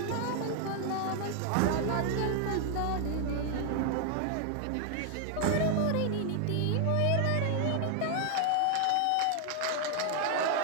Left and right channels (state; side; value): different; both; correlation 0.00